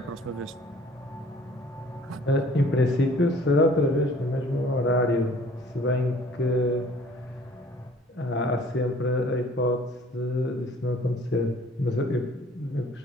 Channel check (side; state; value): both; normal; correlation 0.54